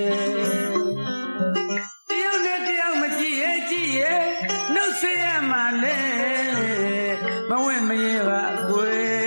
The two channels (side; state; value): both; inverted; correlation -1.00